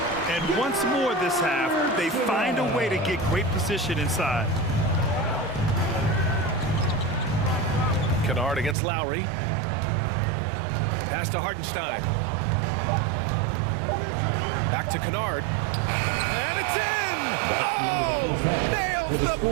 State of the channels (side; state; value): left; drops out; at 8.8 s